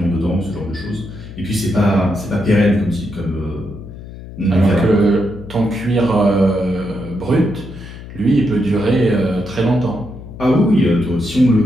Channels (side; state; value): left; noise; hum, 14 dB below the sound